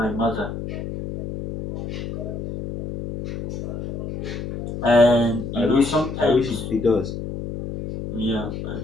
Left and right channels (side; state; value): left; noise; hum, 6 dB below the sound